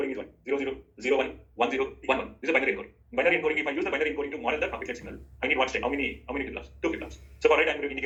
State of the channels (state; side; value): identical; both; correlation 1.00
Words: is 1, 0, 0, 0, 1, 1, 0, 1, 1. This is a binary encoding. Binary encoding, if I use the binary encoding to model the traffic light signal, I need one state. How many flip-flops? Two flip-flops. So for red, I'm